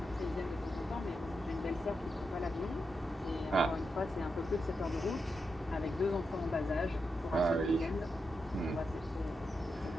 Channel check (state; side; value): normal; both; correlation 0.86